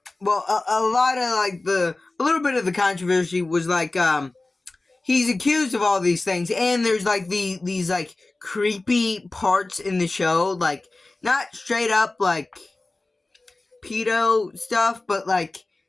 well, a lot of, like, a little bit of the controversy was, like, he's accused of all these things, and there's, like, these, like, creepy parts in the show, like, not straight up, like, pedo stuff, but, like,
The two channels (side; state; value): right; quieter; 3.1 dB